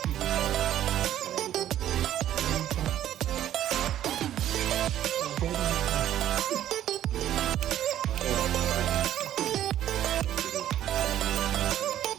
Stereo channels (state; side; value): quieter; left; 11.9 dB